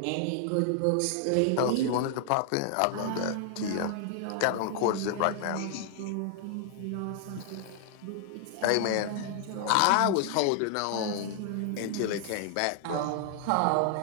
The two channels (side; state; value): both; different; correlation 0.00